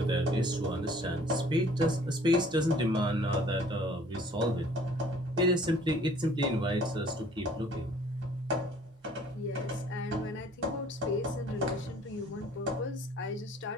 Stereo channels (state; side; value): normal; both; correlation 0.54